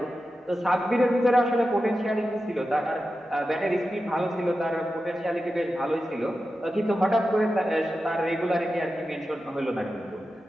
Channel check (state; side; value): normal; both; correlation 0.92